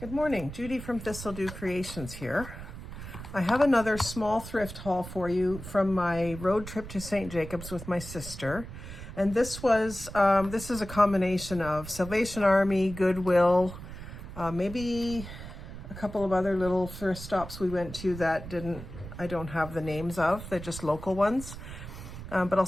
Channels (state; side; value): noise; right; rumble, 11 dB below the sound